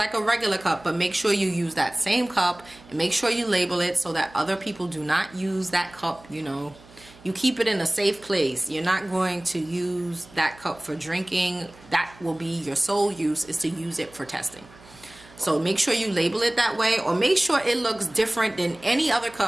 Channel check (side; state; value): right; noise; hum, 23 dB below the sound